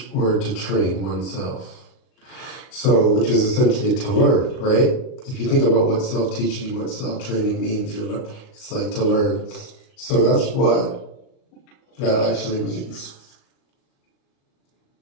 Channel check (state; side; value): late; right; 38 ms